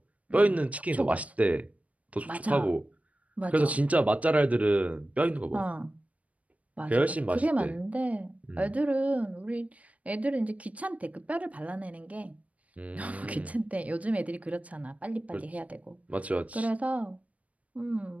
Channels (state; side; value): late; left; 0.067 ms